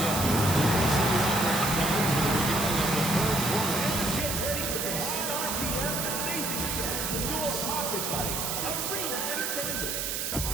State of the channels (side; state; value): right; noise; hiss, 2 dB below the sound